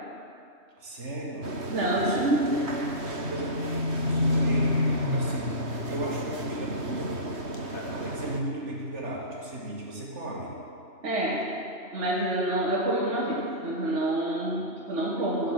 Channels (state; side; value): late; left; 3.2 ms